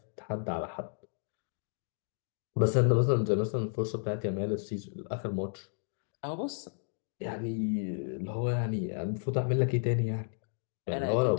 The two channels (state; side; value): silent; right; digital silence